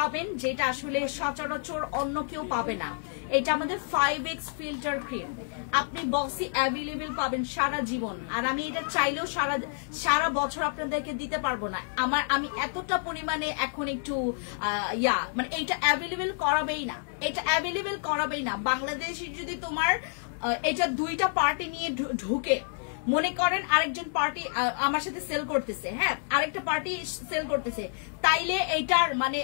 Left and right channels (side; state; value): right; silent; digital silence